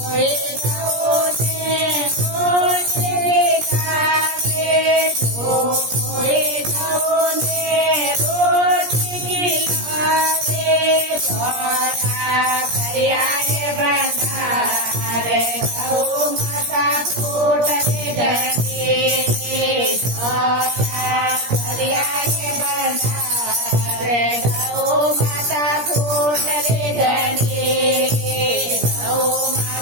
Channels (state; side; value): late; left; 17 ms